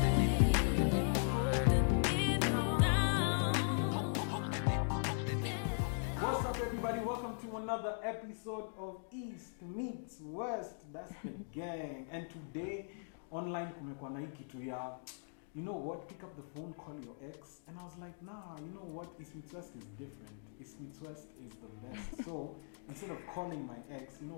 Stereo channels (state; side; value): silent; right; digital silence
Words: What's up, everybody? Welcome to another episode of East Meets West. That's the gang. And today, online kumekuwa na hii kitu ya, you know what, pick up the phone, call your ex. And I was like, nah, you know what, East Meets West is different. East Meets West is the best. So instead of calling my ex, you know